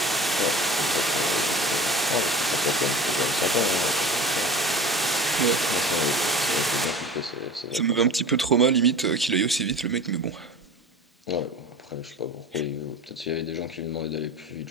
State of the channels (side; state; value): both; normal; correlation 0.37